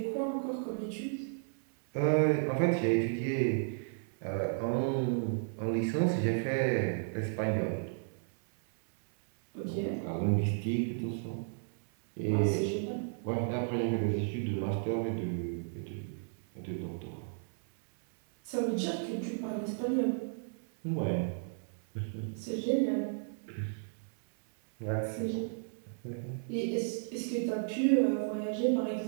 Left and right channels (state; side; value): silent; left; 55 dB below the other